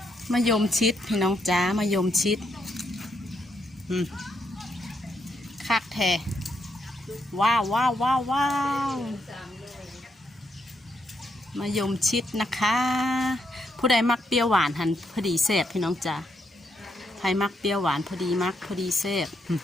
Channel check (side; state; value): both; normal; correlation 0.78